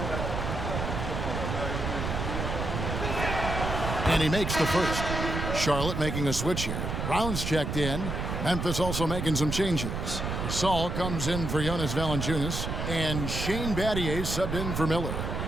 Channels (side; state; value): right; noise; rumble, 3 dB below the sound